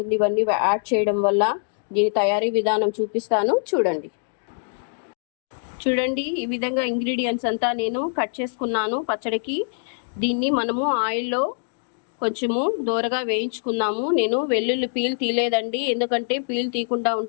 ఇవన్నీ యాడ్ చేయడం వల్ల. దీని తయారీ విధానం చూపిస్తాను, చూడండి. చూడండి, ఈ విధంగా ఇంగ్రీడియంట్స్ అంతా నేను కట్ చేసుకున్నాను పచ్చడికి. దీన్ని మనము ఆయిల్లో కొంచెము దూరగా వేయించుకుందాము. నేను వెల్లుల్లి పీల్ తీయలేదండి, ఎందుకంటే పీల్ తీయకుండా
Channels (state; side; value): silent; right; digital silence